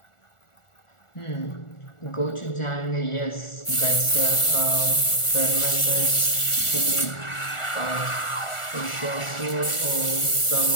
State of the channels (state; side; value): late; right; 1.4 ms